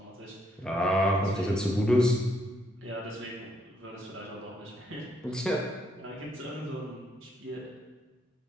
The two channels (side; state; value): both; normal; correlation 0.73